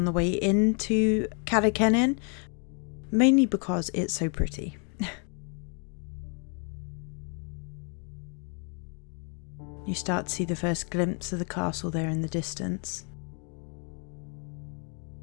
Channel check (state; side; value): quieter; right; 39.6 dB